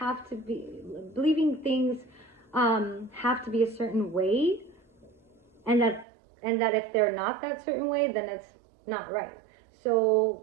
to be a certain way, and that if they're not that certain way, then it's not right.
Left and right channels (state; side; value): drops out; left; at 6.1 s